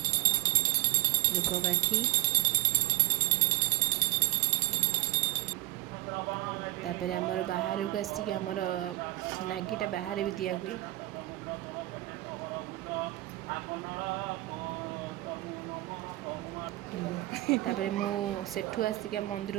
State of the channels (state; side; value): quieter; left; 18.2 dB